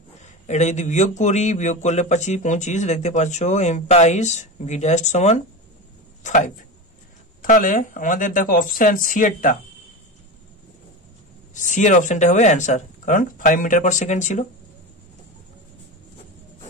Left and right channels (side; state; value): both; normal; correlation 0.23